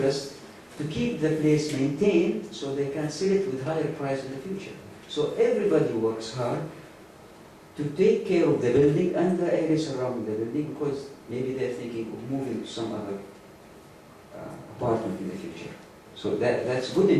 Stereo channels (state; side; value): identical; both; correlation 1.00